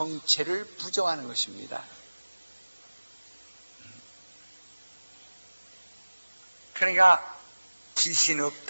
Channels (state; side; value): inverted; both; correlation -1.00